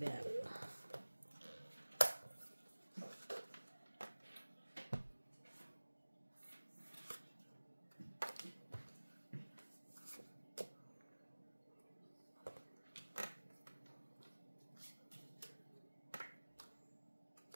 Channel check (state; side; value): inverted; both; correlation -1.00